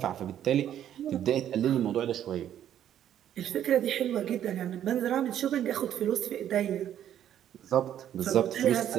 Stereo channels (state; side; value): quieter; left; 10.7 dB